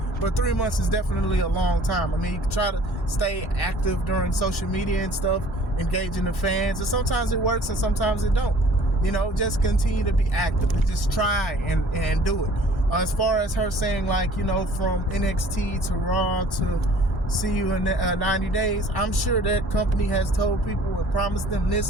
but 3 months is definitely a long time. I mean, you can try to stay active during social media and stuff, engaging the fans, and sometimes it works and sometimes it don't. You know, just continue to be active. Just try and do it. As far as her saying, like, you know, from NXT to Raw to see you in 90 days, I'm sure that company has told people and promised them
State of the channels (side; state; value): both; normal; correlation 0.51